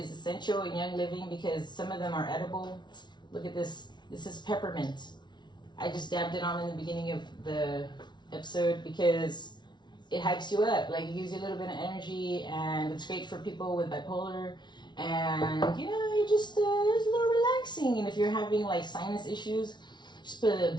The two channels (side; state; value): right; late; 0.21 ms